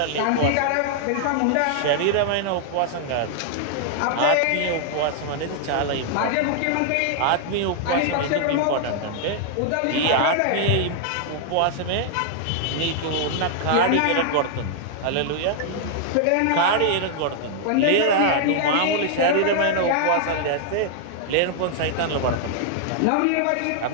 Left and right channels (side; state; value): both; different; correlation -0.01